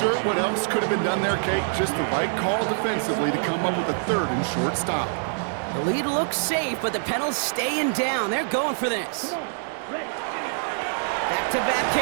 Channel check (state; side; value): silent; left; 62 dB below the other